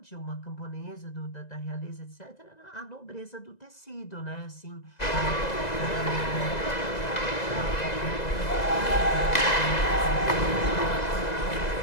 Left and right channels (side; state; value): right; late; 2.0 ms